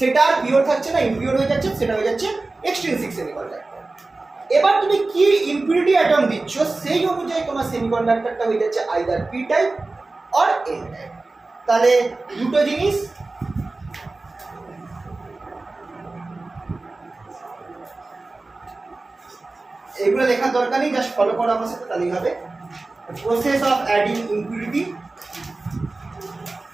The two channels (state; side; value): quieter; left; 3.3 dB